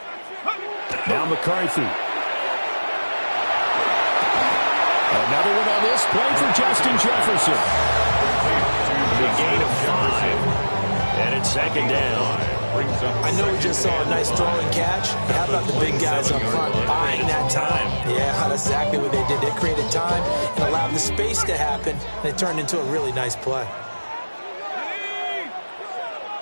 Now McCarthy. Another one on this play for Justin Jefferson. The gain of 5. And it's 2nd down. I know we just saw a nice throwing catch. But how about the big guys up front buying that time? Yeah, that's exactly what they did. They created time and allowed the space to happen, and it turned into a really nice play.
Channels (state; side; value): inverted; both; correlation -1.00